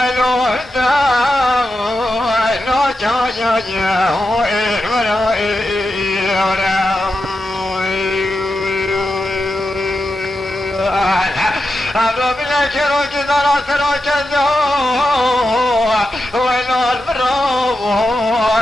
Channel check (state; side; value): normal; both; correlation 0.89